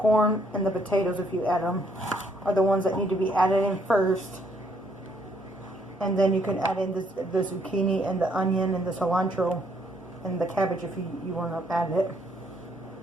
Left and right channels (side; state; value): both; normal; correlation 0.69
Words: and the potatoes, if you add them, are the ones that need to be added in first. And then you can add in the zucchini and the onion and the cilantro and the cabbage if you want to add it